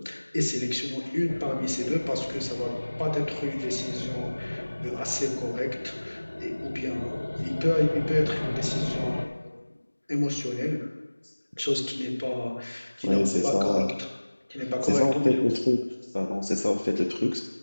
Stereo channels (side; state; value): both; inverted; correlation -1.00